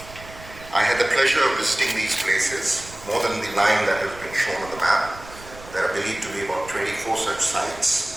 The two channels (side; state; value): right; noise; rumble, 17 dB below the sound